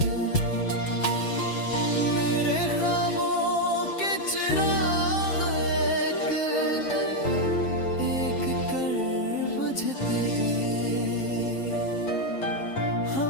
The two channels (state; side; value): late; right; 7.4 ms